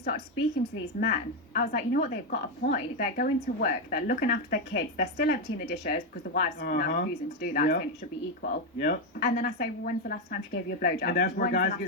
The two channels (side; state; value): both; normal; correlation 0.06